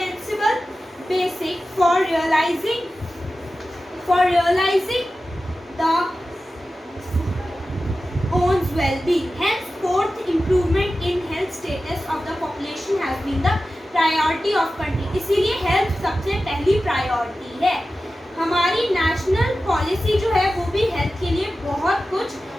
basic for realising the one's well-being. Henceforth, improvement in health status of the population has been the priority of country. इसीलिए हेल्थ सबसे पहली प्रायोरिटी है। हमारी नेशनल पॉलिसी जो है वो भी हेल्थ के लिए बहुत कुछ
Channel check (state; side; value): normal; both; correlation 0.94